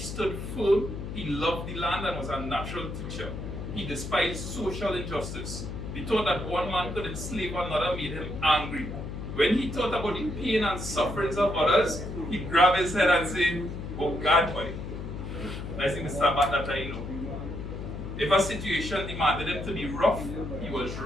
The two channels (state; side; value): noise; left; hum, 7 dB below the sound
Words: firm, he loved the land and was a natural teacher. He despised social injustice. The thought that one man could enslave another made him angry. When he thought about the pain and sufferings of others, he grabbed his head and said, "Oh God, boy." That's the Mr. Bat that I know. If a situation demanded him to be rough, he was